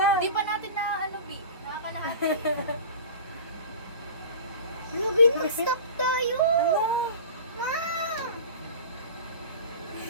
Hindi pa natin na ano, B. Nakakalahati. Grabe, mag-stop tayo. Ano? Ma.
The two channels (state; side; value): inverted; both; correlation -0.36